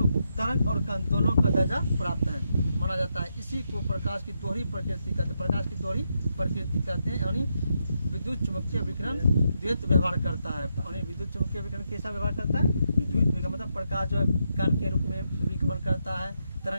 तरंग और कण दोनों का दर्जा प्राप्त है माना जाता है। इसी को प्रकाश की दोहरी प्रकृति कहते हैं। प्रकाश की दोहरी प्रकृति कहते हैं। यानी विद्युत चुंबकीय विकिरण द्वैत व्यवहार करता है। यानी विद्युत चुंबकीय विकिरण कैसा व्यवहार करता है? विद्युत विकिरण मतलब प्रकाश जो है कण के रूप में भी गमन करता है,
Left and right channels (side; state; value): both; inverted; correlation -0.81